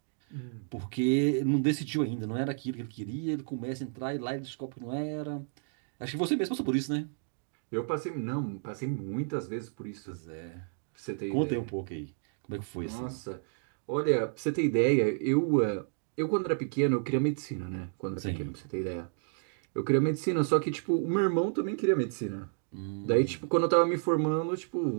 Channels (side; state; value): left; silent; digital silence